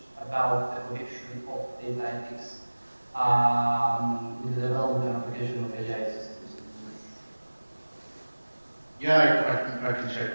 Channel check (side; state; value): both; inverted; correlation -1.00